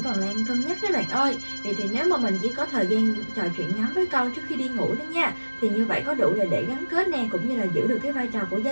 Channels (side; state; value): both; inverted; correlation -1.00